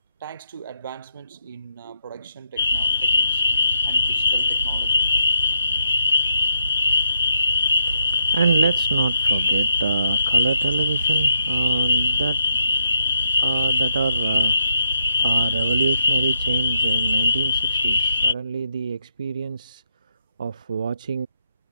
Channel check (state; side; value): inverted; both; correlation -0.79